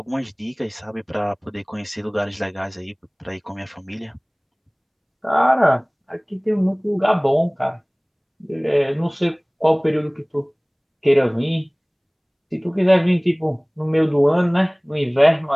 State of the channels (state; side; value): identical; both; correlation 1.00